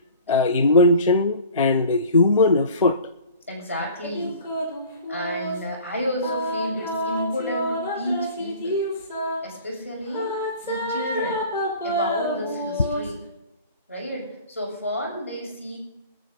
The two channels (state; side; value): inverted; both; correlation -0.45